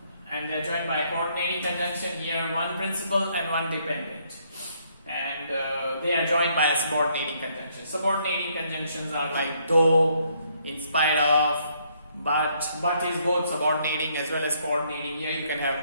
and they are joined by a coordinating conjunction. Here one principal and one dependent, and they are joined by a subordinating conjunction. Subordinating conjunctions are like though, in spite of, but is both subordinating as well as coordinating. Here you can have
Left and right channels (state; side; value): inverted; both; correlation -0.69